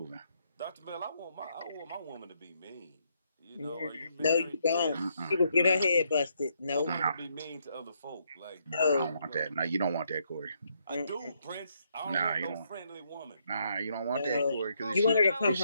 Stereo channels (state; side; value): inverted; both; correlation -0.75